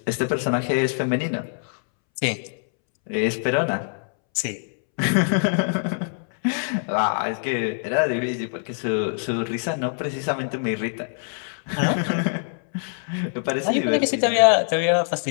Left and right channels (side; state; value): right; silent; 63 dB below the other